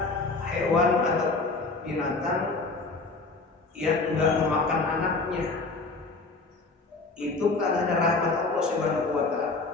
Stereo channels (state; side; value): quieter; right; 3.7 dB